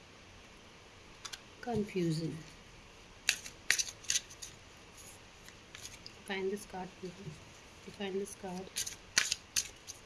Confusion, define this card please, define this card,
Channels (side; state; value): both; identical; correlation 1.00